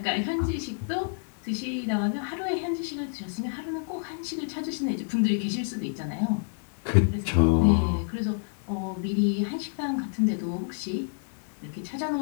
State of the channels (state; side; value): silent; right; 59 dB below the other